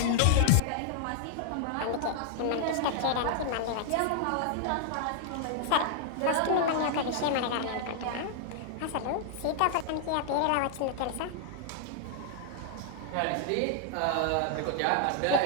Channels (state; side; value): different; both; correlation -0.01